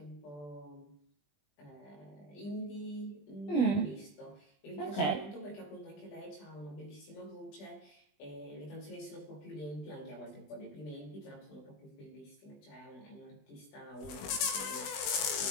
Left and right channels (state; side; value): late; right; 20 ms